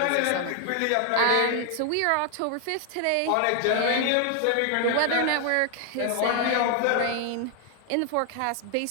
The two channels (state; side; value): different; both; correlation 0.00